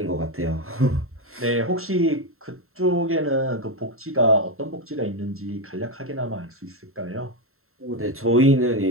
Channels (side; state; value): left; late; 0.62 ms